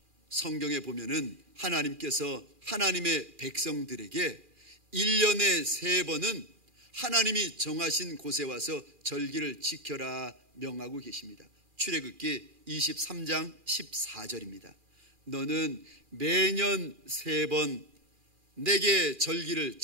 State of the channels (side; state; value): left; late; 2.4 ms